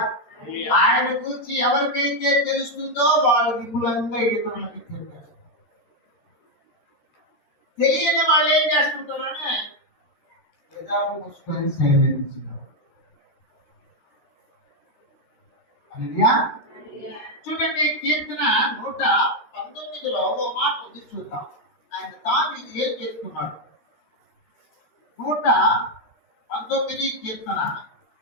ఆయన గురించి ఎవరికైతే తెలుస్తుందో వాళ్ళు విపులంగా ఇతరులకి చెప్పారు. తెలియని వాళ్ళు ఏం చేస్తుంటారనే ఎదాలు మూసుకొని సైలెన్స్. చూడండి, కీర్తన 119లో ఓ మాట ఉంది, చూద్దాం. ఆయన తాను ఇది ఏం చేస్తున్నాడు. 119 19 కీర్తన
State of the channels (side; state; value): right; late; 13 ms